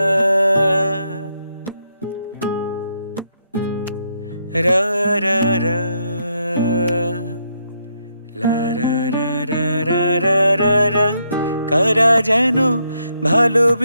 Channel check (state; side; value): inverted; both; correlation -0.77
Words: রা রা রা লা রা রা রা রা রা রা রা। কারা যেন